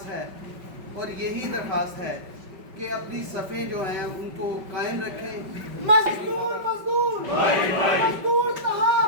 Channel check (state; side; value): late; left; 5.2 ms